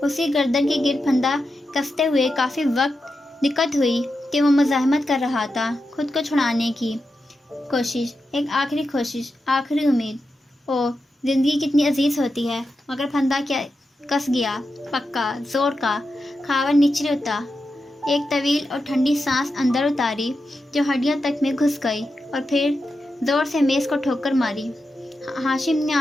اسی گردن کے گرد پھندا کستے ہوئے کافی وقت دقت ہوئی کہ وہ مزاحمت کر رہا تھا، خود کو چھڑانے کی کوشش، ایک آخری کوشش، آخری امید۔ او، زندگی کتنی عزیز ہوتی ہے، مگر پھندا کیا کس گیا، پکا، زور کا۔ خاوند نیچے اترا، ایک طویل اور ٹھنڈی سانس اندر اتاری جو ہڈیوں تک میں گھس گئی، اور پھر زور سے میز کو ٹھوکر ماری۔ ہاشم نے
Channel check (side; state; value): both; normal; correlation 0.89